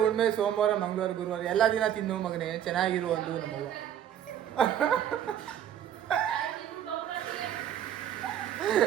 ಹುಣ್ಮೆ ಸೋಮವಾರ ಮಂಗಳವಾರ ಗುರುವಾರ ಎಲ್ಲ ದಿನ ತಿನ್ನು ಮಗನೇ, ಚೆನ್ನಾಗಿರು ಒಂದು ನಮ್ಮವ್ವ.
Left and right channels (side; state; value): left; quieter; 10.3 dB